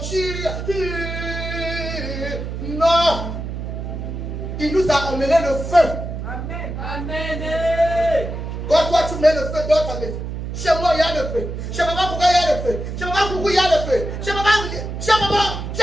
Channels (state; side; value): noise; right; hum, 6 dB below the sound